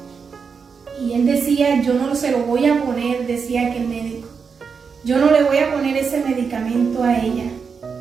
Y él decía: yo no se lo voy a poner, decía aquel médico, yo no le voy a poner ese medicamento a ella.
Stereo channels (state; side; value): quieter; left; 5.7 dB